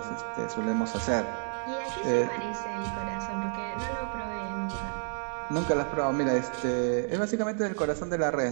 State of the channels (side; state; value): left; silent; 58 dB below the other